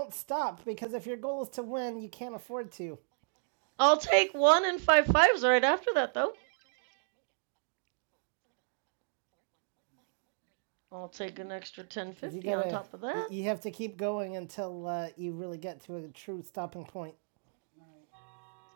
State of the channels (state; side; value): silent; left; digital silence